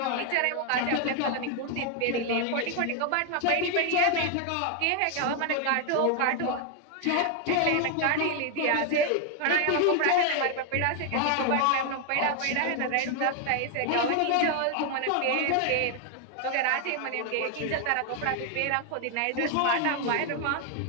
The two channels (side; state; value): both; different; correlation 0.00